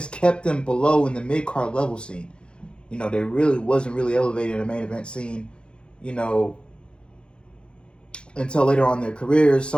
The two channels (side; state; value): right; late; 0.054 ms